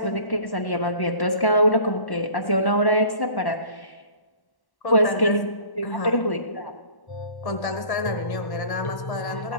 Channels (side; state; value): right; late; 1.1 ms